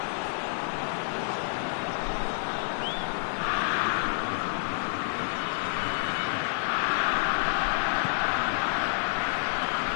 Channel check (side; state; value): right; silent; 59 dB below the other